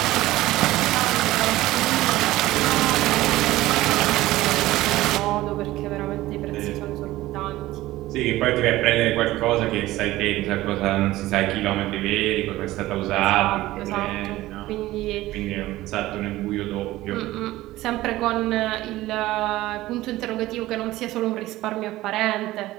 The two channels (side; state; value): left; quieter; 16.8 dB